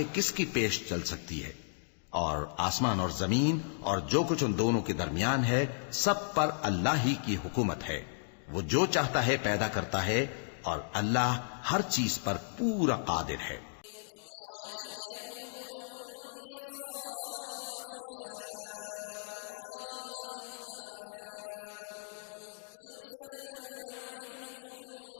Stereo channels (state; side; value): silent; right; digital silence